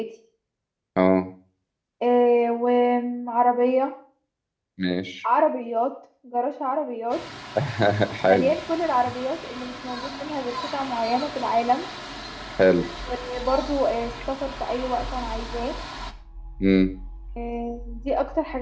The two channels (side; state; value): both; identical; correlation 1.00